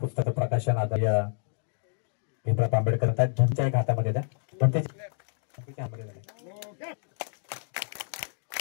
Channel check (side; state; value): right; silent; digital silence